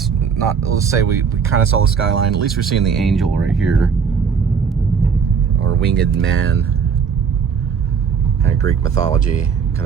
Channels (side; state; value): left; quieter; 6.4 dB